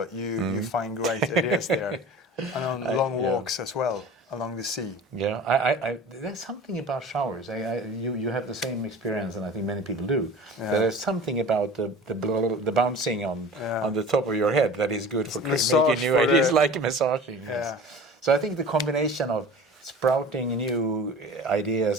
you find great ideas there, and on long walks as well along the sea. Yeah, I there's something about showers. You have the same experience, and I think many people do. Yeah. There's something about the bouncing on the top of your head that is good for making new ideas, like massaging. Yes. Yeah. So I think the combination of sprouting new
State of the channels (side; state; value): both; normal; correlation 0.40